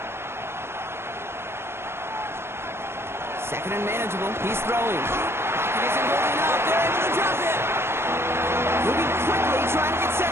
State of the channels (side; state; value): left; late; 0.12 ms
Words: Second and manageable. He's throwing. Pocket isn't holding up. They're able to drop him. Moving quickly, trying to get set